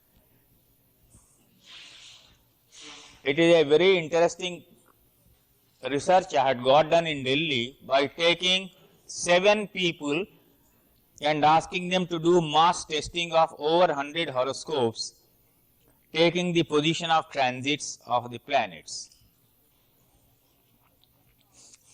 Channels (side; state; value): both; identical; correlation 1.00